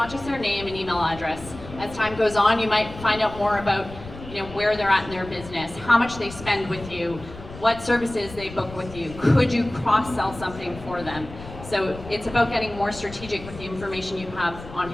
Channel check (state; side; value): noise; left; rumble, 14 dB below the sound